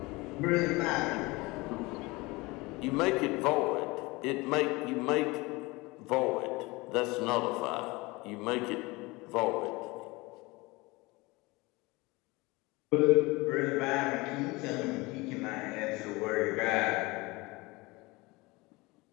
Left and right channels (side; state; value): right; quieter; 23.4 dB